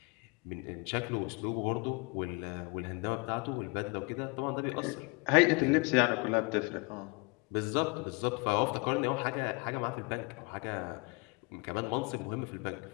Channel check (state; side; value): quieter; right; 28.7 dB